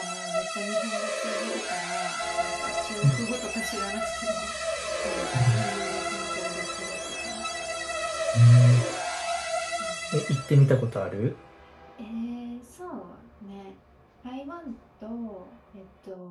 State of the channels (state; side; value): identical; both; correlation 1.00